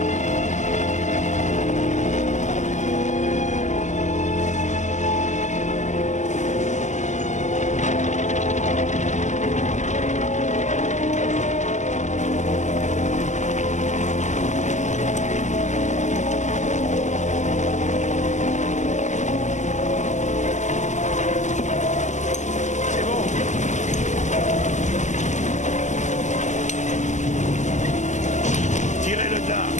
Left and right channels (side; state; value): right; late; 0.34 ms